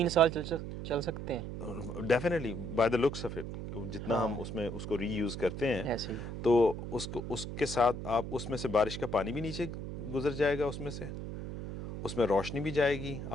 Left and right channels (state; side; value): noise; right; hum, 7 dB below the sound